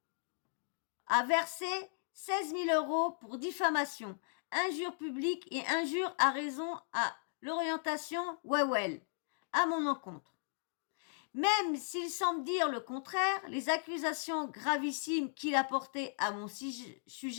à verser 16 000 € pour diffamation, injure publique et injure à raison à l'orientation Wewel, à mon encontre. Même s'il semble dire le contraire, les accusations gravissimes qu'il a portées à mon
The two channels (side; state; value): right; silent; digital silence